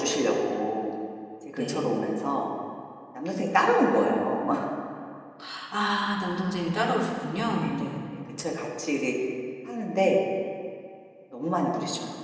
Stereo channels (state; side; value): identical; both; correlation 1.00